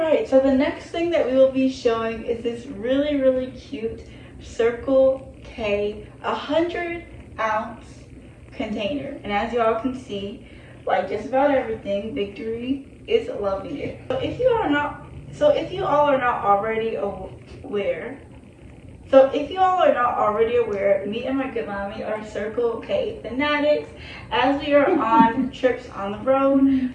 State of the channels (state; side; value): identical; both; correlation 1.00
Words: so the next thing that we will be showing is this really, really cute Circle K 100-ounce container. And as you all can see, like just about everything, Victory is loving it. So if you all are not already aware, me and my good mommy are Circle K fanatics. As we are on trips on the road,